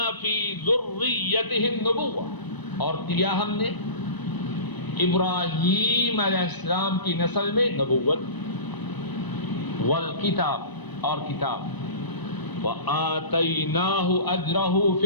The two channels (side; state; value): right; late; 1.0 ms